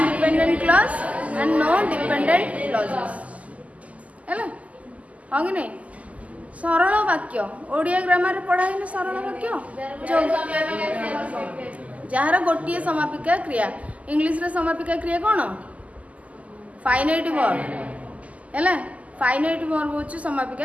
clause and no dependent clauses है हाँ कि नहीं सरल वाक्य Odia grammar पढ़ा है सरल वाक्य जार गोटे समापिका क्रिया इंग्लिश रे समापिका क्रिया कौन फाइनाइट वर्ब है फाइनाइट वर्ब हूँ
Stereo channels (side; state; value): left; late; 0.071 ms